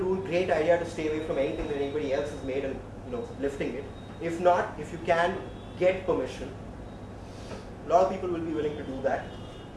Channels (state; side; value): identical; both; correlation 1.00